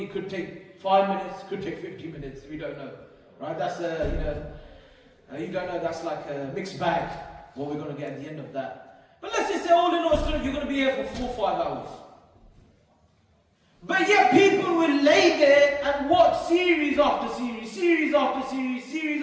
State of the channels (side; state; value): both; identical; correlation 1.00